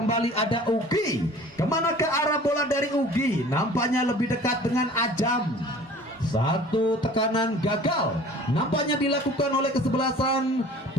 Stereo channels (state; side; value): normal; both; correlation 0.46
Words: ada Ugi. Kemana ke arah bola dari Ugi? Nampaknya lebih dekat dengan Ajam. Satu tekanan gagal nampaknya dilakukan oleh kesebelasan